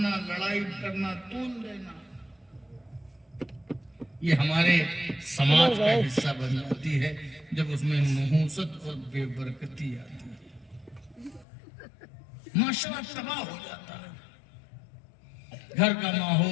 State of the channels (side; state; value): right; drops out; at 11.5 s